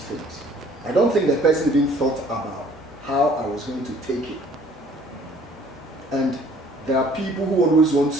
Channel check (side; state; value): both; normal; correlation 0.56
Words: things. I don't think the person even thought about how I was going to take it. And there are people who always want